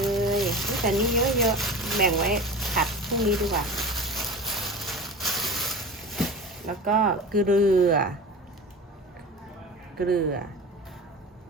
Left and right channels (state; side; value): normal; both; correlation 0.33